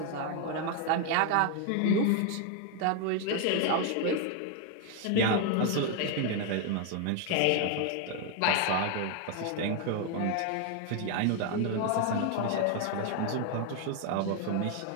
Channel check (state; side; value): different; both; correlation 0.01